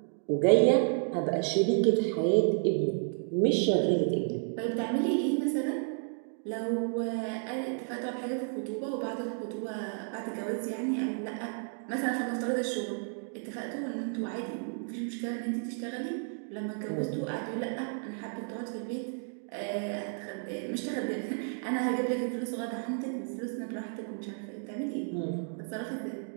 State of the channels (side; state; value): left; silent; 56 dB below the other